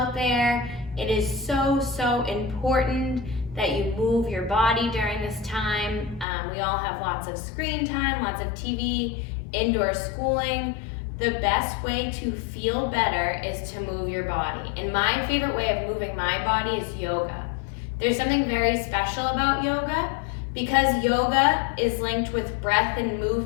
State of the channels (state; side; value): drops out; right; at 6.2 s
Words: there. It is so important that you move your body during this time. We all have lots of screen time, lots of TV, indoor schooling. The best way to feel better is to move your body. And my favorite way of moving my body is yoga. There's something very special about yoga because yoga is linked with breath and